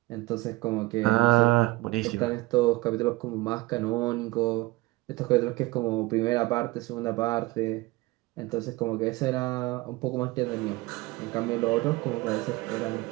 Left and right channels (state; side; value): quieter; left; 21.1 dB